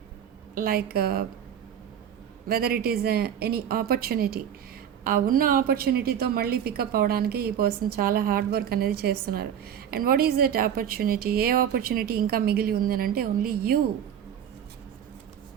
like whether it is any opportunity, ఆ ఉన్న ఆపర్చునిటీతో మళ్ళీ పికప్ అవడానికి ఈ పర్సన్ చాలా హార్డ్ వర్క్ అనేది చేస్తున్నారు. And what is that opportunity? ఏ ఆపర్చునిటీ ఇంకా మిగిలి ఉంది అని అంటే only you.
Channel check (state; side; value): quieter; left; 9.2 dB